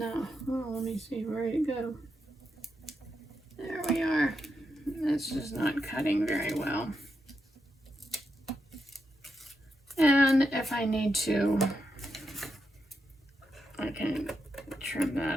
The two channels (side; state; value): both; normal; correlation 0.85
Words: Oh, let me see, where did it go? There we are. It's just not cutting very well. And if I need to, I can trim